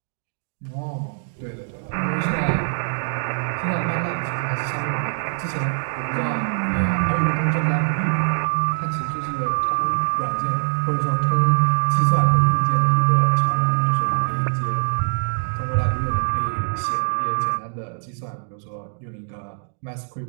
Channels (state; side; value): silent; left; digital silence